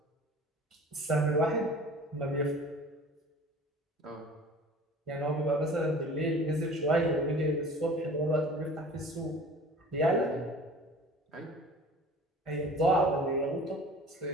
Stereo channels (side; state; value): both; normal; correlation 0.43